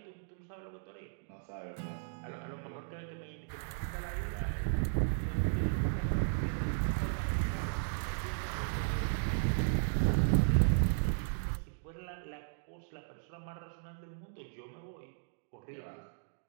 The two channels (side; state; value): left; silent; digital silence